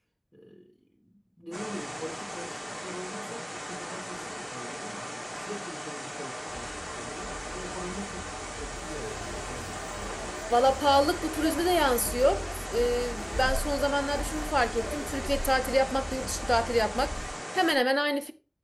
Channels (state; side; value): identical; both; correlation 1.00